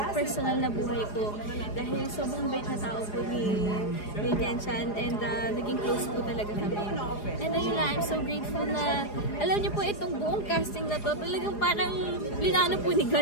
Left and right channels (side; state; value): right; late; 4.8 ms